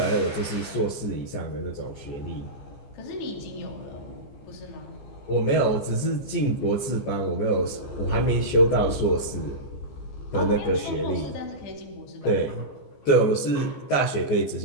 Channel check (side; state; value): right; late; 15 ms